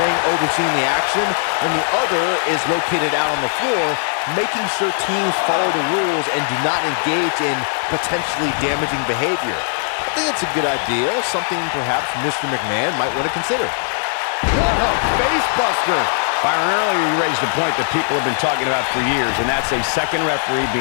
overseeing the action, and the other is located out on the floor, making sure teams follow the rules and do not engage in potentially damaging behavior. I think it's a good idea, something perhaps Mr. McMahon might want to consider. What a face buster! Byron, earlier you raised a point that people have been talking about for years, and that's a second referee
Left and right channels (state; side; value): silent; right; digital silence